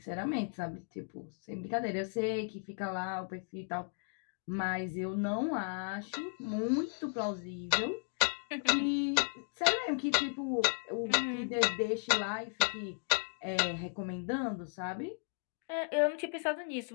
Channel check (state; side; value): silent; right; 54 dB below the other